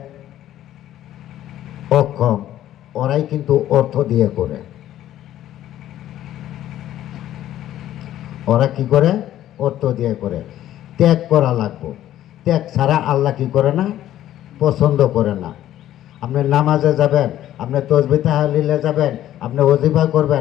অক্ষম, ওরাই কিন্তু অর্থ দিয়ে করে। ওরা কি করে? অর্থ দিয়ে করে। ত্যাগ করা লাগবে। ত্যাগ ছাড়া আল্লাহ কি করে না? পছন্দ করে না। আপনি নামাজে যাবেন, আপনি তসবিহ তাহলিলে যাবেন, আপনি ওজিফা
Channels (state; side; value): quieter; right; 12.6 dB